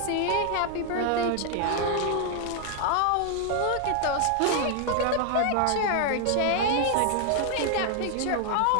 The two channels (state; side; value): different; both; correlation 0.00